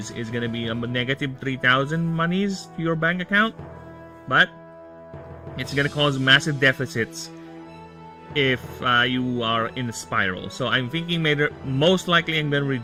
is going to be a negative 3,000 monies to your bank account. But it's going to cause massive deficits if you are in a spiral. So I'm thinking most likely I'm going to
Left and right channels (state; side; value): identical; both; correlation 1.00